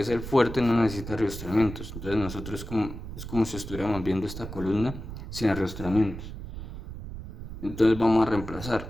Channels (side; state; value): right; noise; rumble, 10 dB below the sound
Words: el fuerte, no necesita arrastramientos. Entonces nosotros es como si estuviéramos viendo esta columna sin arrastramientos. Entonces vamos a reemplazar.